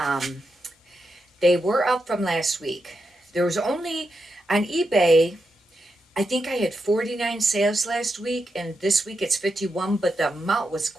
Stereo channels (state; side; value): normal; both; correlation 0.86